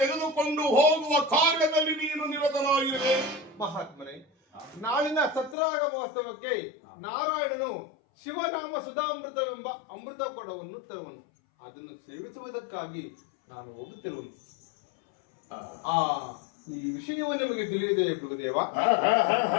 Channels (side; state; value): right; drops out; at 5.6 s